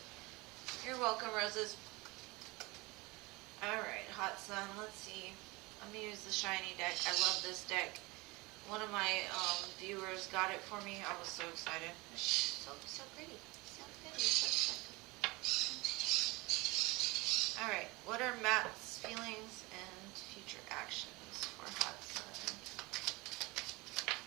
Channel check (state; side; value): quieter; left; 23.8 dB